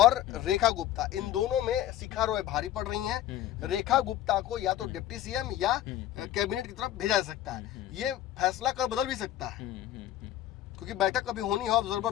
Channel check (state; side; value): quieter; right; 12.6 dB